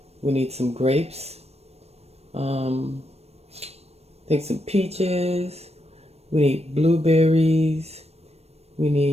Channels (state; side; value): late; left; 0.31 ms